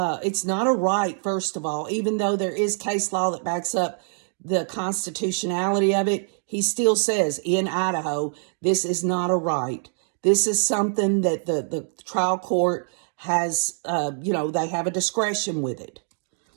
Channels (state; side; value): silent; left; digital silence